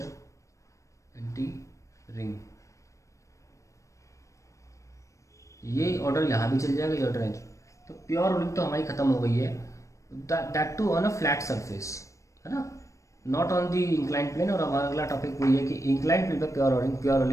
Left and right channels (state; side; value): late; right; 0.15 ms